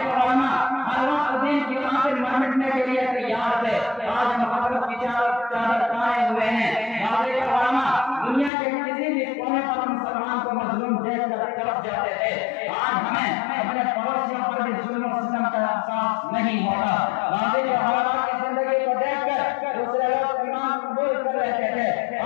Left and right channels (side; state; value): right; drops out; at 8.5 s